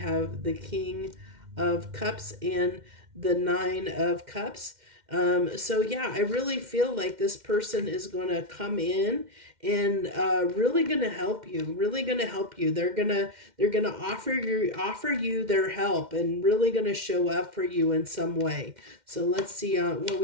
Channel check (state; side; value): late; left; 2.1 ms